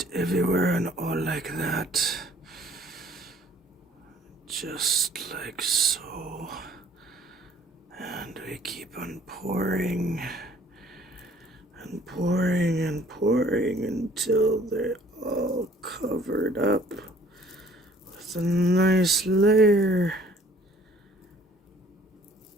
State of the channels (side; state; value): both; normal; correlation 0.56